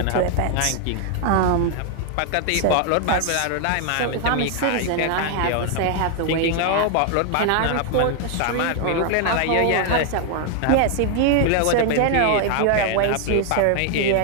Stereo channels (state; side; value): different; both; correlation 0.00